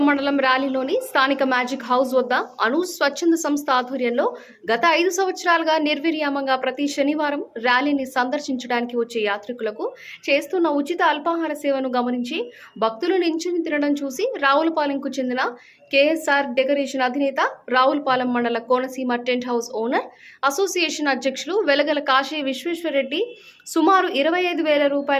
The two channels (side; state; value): both; identical; correlation 1.00